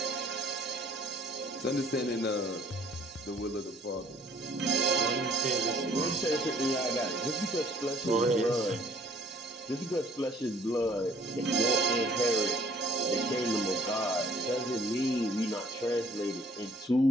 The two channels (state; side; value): normal; both; correlation 0.60